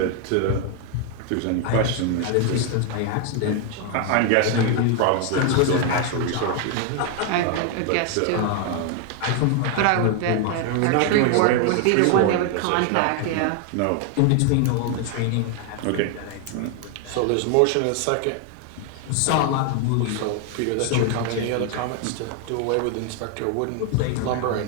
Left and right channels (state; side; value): different; both; correlation 0.00